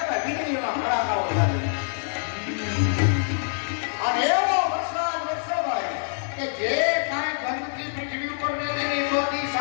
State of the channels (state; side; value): silent; right; 61 dB below the other